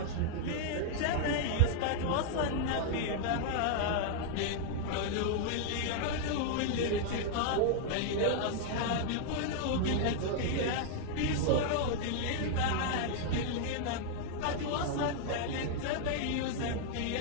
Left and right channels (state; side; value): different; both; correlation 0.00